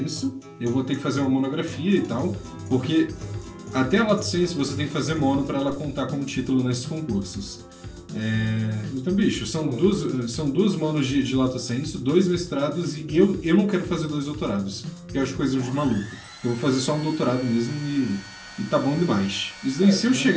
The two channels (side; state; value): both; identical; correlation 1.00